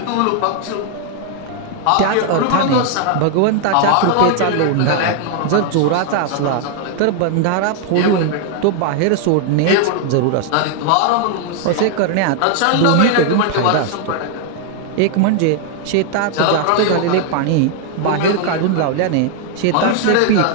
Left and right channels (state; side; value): different; both; correlation 0.00